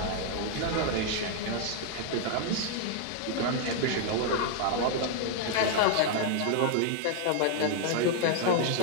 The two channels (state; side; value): different; both; correlation 0.00